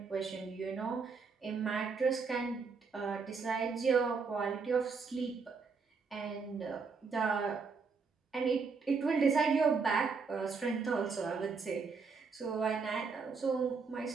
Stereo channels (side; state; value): left; quieter; 4.9 dB